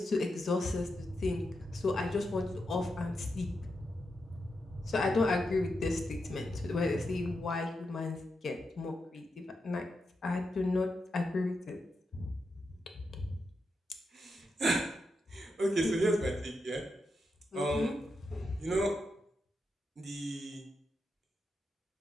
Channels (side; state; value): both; normal; correlation 0.86